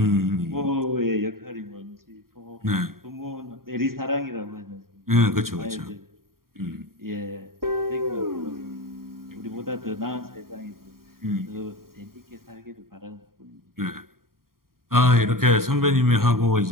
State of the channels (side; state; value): left; late; 0.92 ms